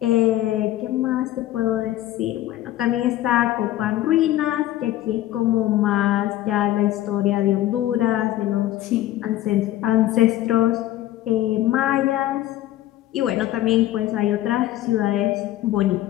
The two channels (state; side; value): quieter; right; 14.2 dB